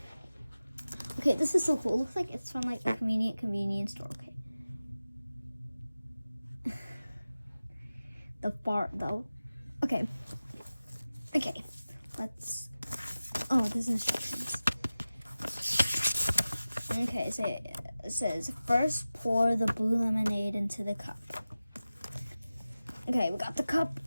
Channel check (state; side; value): inverted; both; correlation -0.95